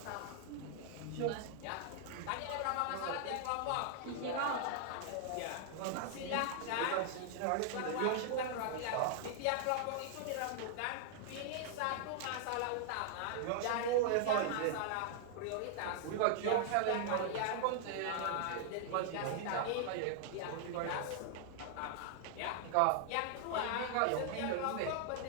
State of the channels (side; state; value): both; different; correlation 0.00